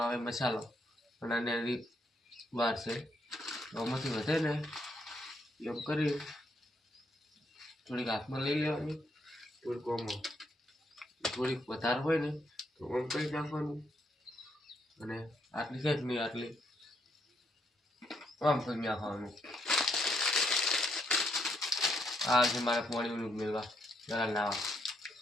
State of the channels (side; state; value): both; normal; correlation 0.75